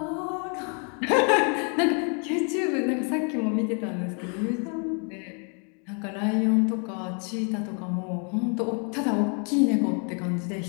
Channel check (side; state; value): right; quieter; 39.0 dB